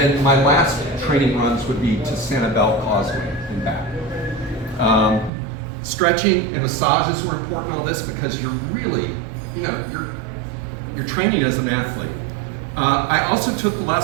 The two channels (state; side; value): drops out; left; at 5.3 s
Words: my last training runs would be to Sanibel Causeway and back. Stretching and massages were important in all this because you're really, you're training as an athlete. I also took